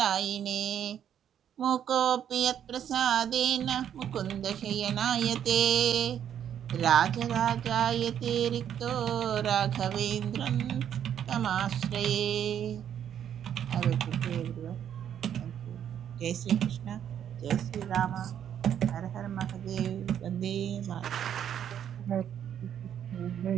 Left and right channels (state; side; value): quieter; left; 9.5 dB